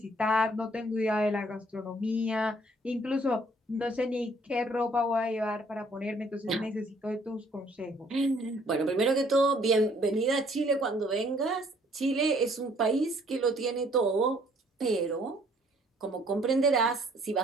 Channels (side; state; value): both; normal; correlation 0.62